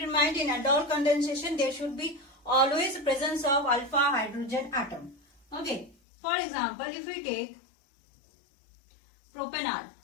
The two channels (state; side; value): drops out; right; at 6.0 s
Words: in mind, in aldol condensation there should be always presence of alpha hydrogen atom. Okay, for example, if we take propanol,